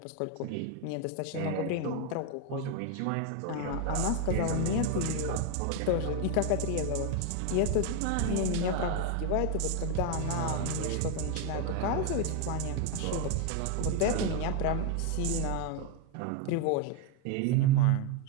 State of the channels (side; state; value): both; different; correlation 0.01